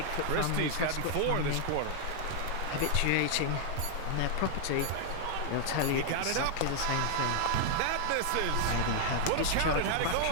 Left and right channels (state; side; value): different; both; correlation 0.00